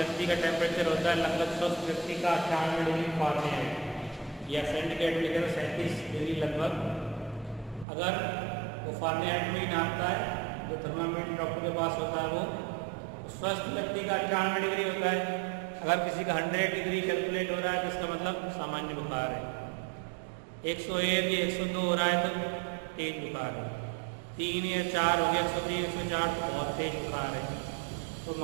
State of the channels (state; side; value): drops out; left; at 7.9 s